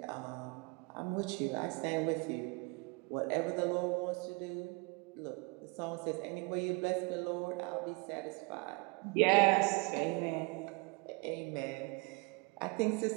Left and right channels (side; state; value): left; quieter; 29.4 dB